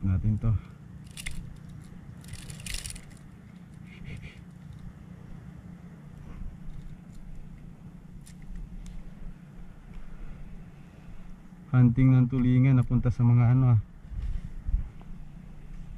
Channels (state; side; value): identical; both; correlation 1.00